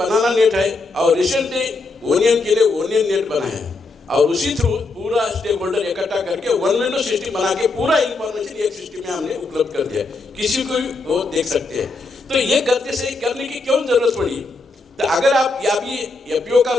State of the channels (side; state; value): right; quieter; 3.5 dB